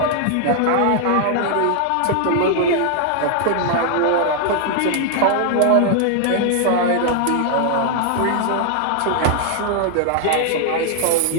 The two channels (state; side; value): different; both; correlation 0.00